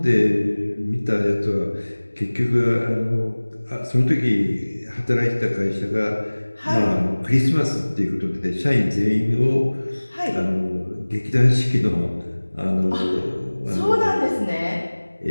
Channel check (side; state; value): both; inverted; correlation -1.00